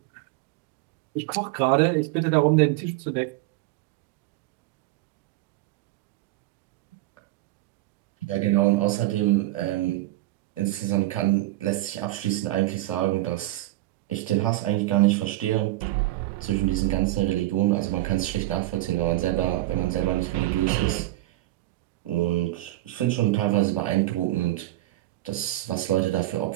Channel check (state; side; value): quieter; left; 17.0 dB